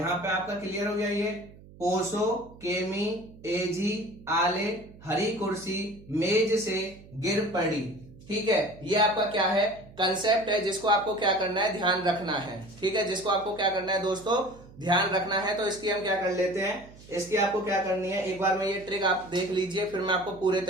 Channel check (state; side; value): noise; right; hum, 21 dB below the sound